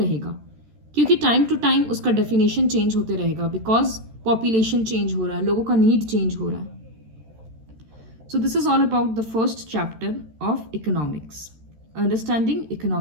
क्योंकि time to time उसका definition change होते रहेगा, because population change हो रहा है, लोगों का नीड चेंज हो रहा है। So this is all about the first chapter of economics, understanding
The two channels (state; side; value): late; left; 13 ms